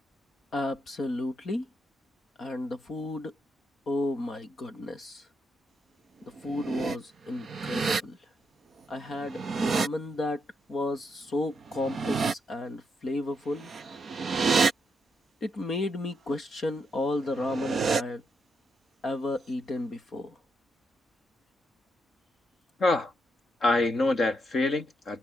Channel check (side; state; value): both; normal; correlation 0.80